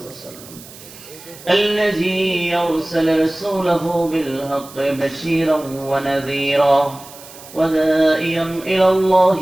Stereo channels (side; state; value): right; noise; hiss, 19 dB below the sound